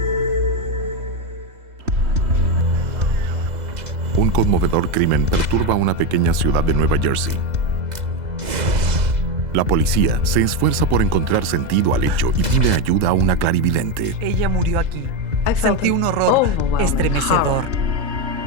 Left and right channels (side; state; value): left; late; 3.7 ms